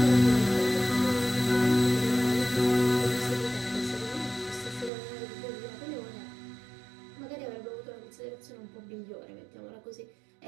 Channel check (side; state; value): left; drops out; at 4.9 s